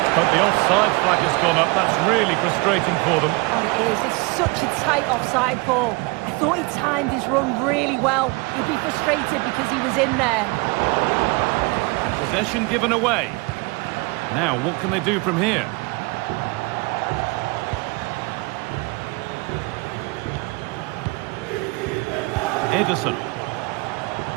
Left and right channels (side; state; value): left; quieter; 26.3 dB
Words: But the offside flag has gone up. That's really frustrating for them. Oh, it is. It's such a tight offside ball. I thought he timed his run really well. He'd be frustrated because he was in there. And possession given away. Now, what can they do from here? Ederson.